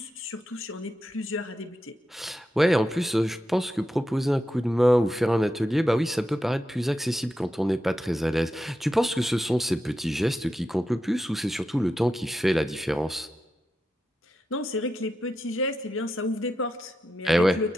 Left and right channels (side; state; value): both; normal; correlation 0.88